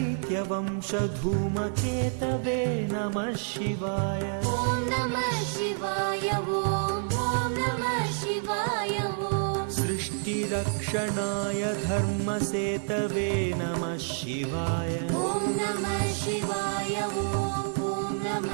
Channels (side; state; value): left; silent; 58 dB below the other